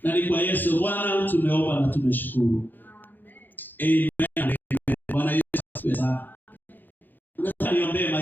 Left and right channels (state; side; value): late; right; 0.088 ms